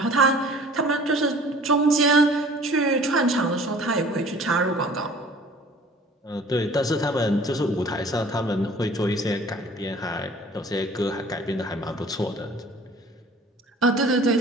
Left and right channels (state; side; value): normal; both; correlation 0.49